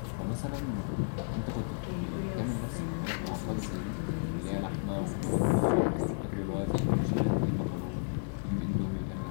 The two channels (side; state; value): right; silent; 56 dB below the other